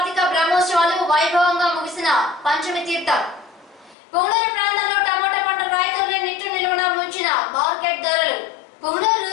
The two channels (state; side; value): drops out; right; at 4.0 s